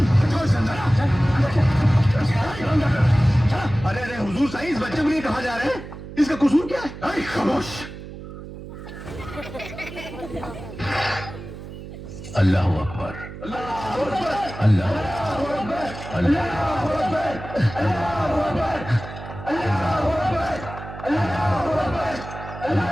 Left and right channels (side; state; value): right; noise; hum, 12 dB below the sound